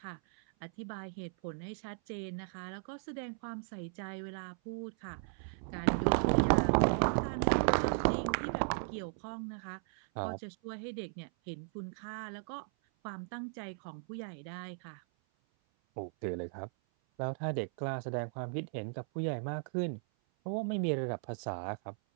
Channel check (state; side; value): silent; left; 53 dB below the other